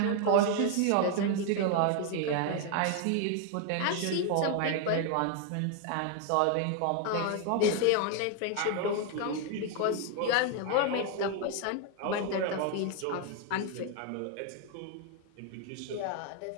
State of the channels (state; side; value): different; both; correlation 0.01